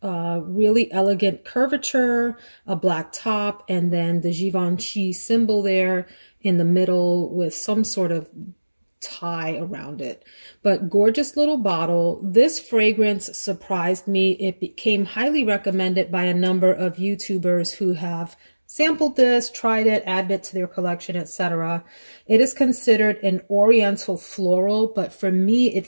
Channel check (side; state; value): both; inverted; correlation -1.00